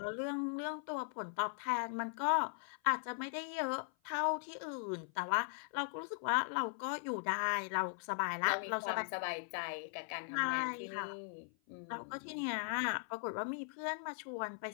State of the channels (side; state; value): right; silent; 52 dB below the other